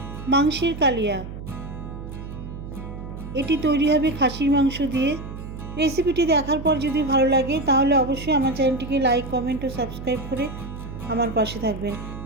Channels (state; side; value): noise; right; hum, 10 dB below the sound